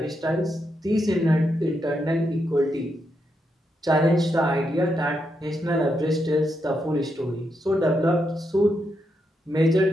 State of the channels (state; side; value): normal; both; correlation 0.82